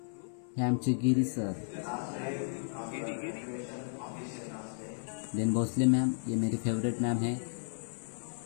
हे आमचे गिरी सर, देन भोसले मैम, ये मेरी फेवरेट मैम है.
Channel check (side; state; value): right; silent; 55 dB below the other